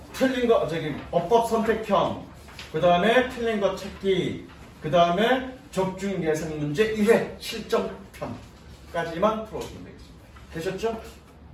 틀린 거, 어법 선택형, 그 다음에 틀린 거 찾기, 그 다음에 적중 예상 문제 1회 실전편까지만 풀어주면 되겠습니다. 되셨죠?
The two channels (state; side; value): identical; both; correlation 1.00